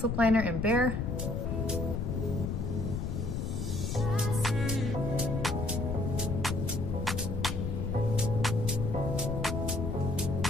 lip liner in Bear.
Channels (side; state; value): left; noise; rumble, 1 dB below the sound